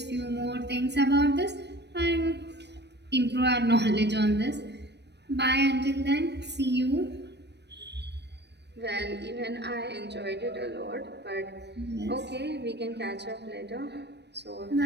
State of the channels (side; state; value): left; late; 0.50 ms